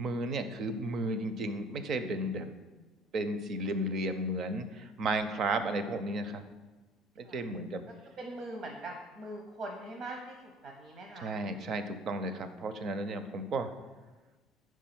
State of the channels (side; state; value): both; normal; correlation 0.50